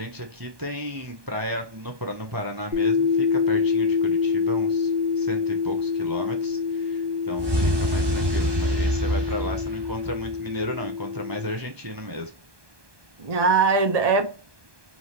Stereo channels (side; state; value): left; late; 1.2 ms